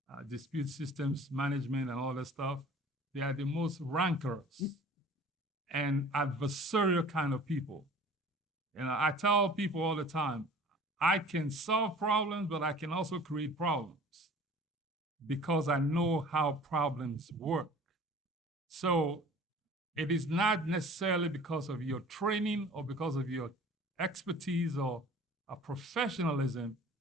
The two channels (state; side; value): normal; both; correlation 0.46